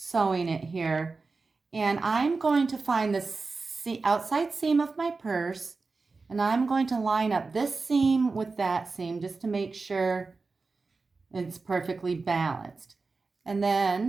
it here. And I'm going to find the outside seam of my purse, and I'm going to line up this seam with that seam just to make sure it's perfectly balanced. And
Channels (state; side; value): quieter; left; 4.1 dB